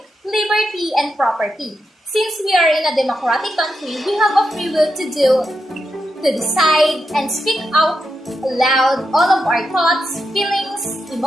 liberty, and property. Since we are in a democratic country, we have a free will to decide and speak out loud all of our thoughts, feelings,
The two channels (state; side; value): normal; both; correlation 0.86